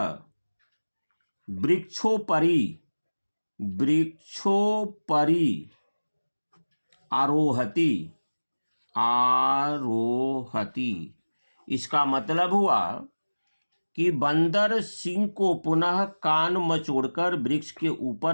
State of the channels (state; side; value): inverted; both; correlation -1.00